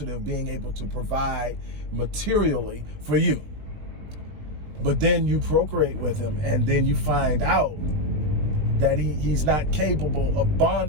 of being able to provide materially for you. But then you procreate with him, and then you find out that he's not capable of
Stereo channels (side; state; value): left; late; 20 ms